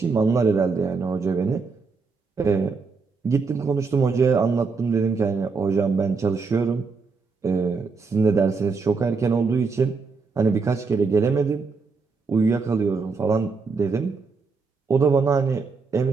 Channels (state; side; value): quieter; left; 4.7 dB